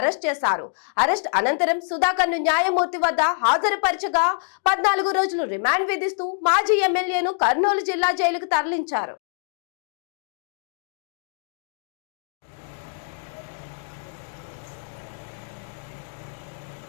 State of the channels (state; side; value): silent; right; digital silence